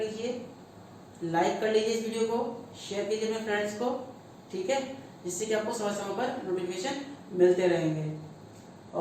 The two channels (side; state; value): both; identical; correlation 1.00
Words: लाइक कर लीजिए इस वीडियो को, शेयर कीजिए अपने फ्रेंड्स को, ठीक है, जिससे कि आपको समय समय पर नोटिफिकेशन मिलते रहेंगे।